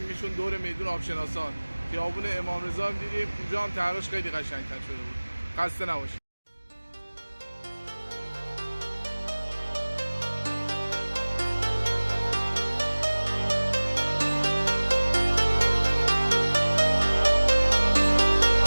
دور میدون آبشناسان. خیابون امام رضا هم دیدیم، اونجا هم طرحش خیلی قشنگ‌تر شده بود. خسته نباشید.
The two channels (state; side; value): inverted; both; correlation -1.00